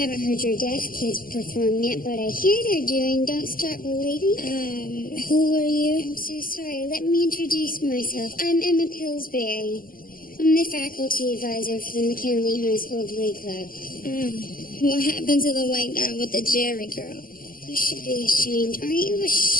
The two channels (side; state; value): right; late; 0.41 ms